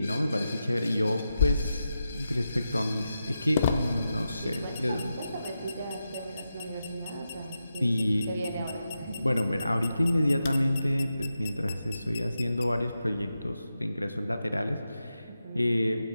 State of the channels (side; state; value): both; inverted; correlation -0.88